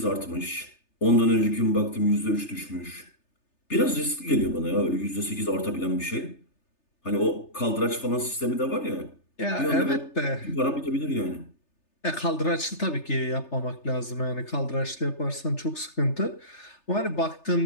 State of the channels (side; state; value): right; late; 3.3 ms